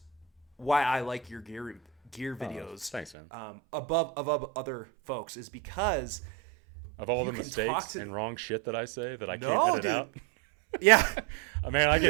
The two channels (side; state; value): left; drops out; at 3.1 s